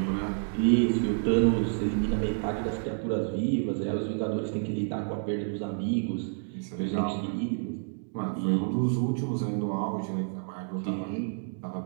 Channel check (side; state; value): left; silent; 58 dB below the other